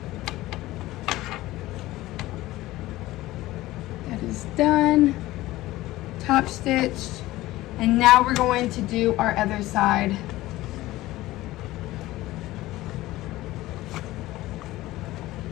That is done. Top stitched. And now we're going to do our other side.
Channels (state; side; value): quieter; right; 17.3 dB